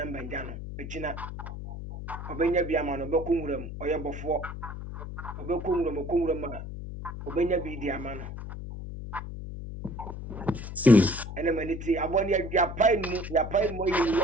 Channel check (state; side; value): noise; left; hum, 8 dB below the sound